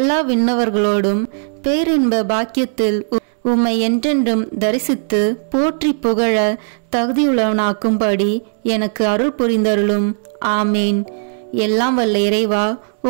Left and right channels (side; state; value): left; silent; digital silence